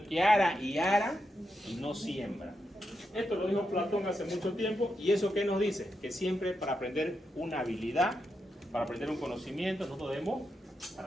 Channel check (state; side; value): normal; both; correlation 0.85